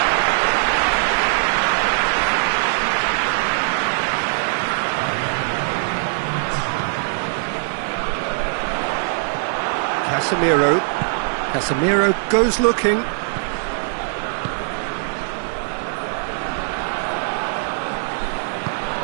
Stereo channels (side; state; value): left; silent; digital silence